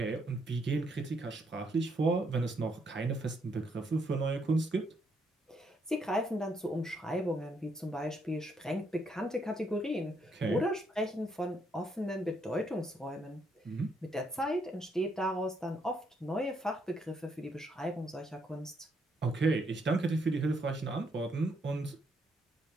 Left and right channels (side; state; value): both; normal; correlation 0.74